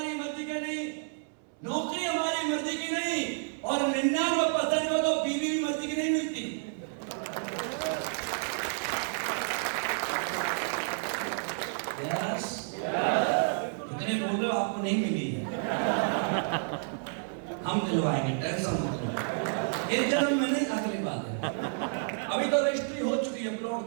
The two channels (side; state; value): left; silent; 58 dB below the other